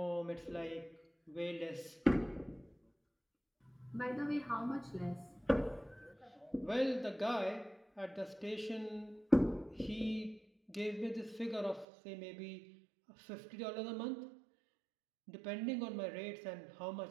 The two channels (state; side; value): drops out; left; at 11.9 s